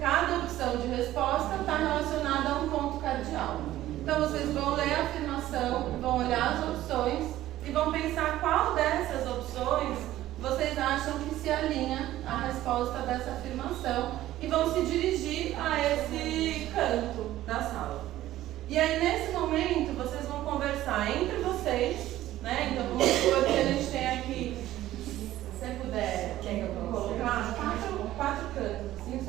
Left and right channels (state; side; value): quieter; left; 14.4 dB